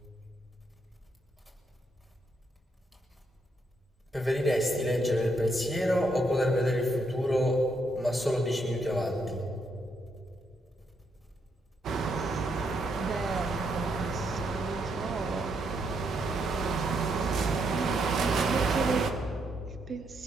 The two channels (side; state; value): both; normal; correlation 0.77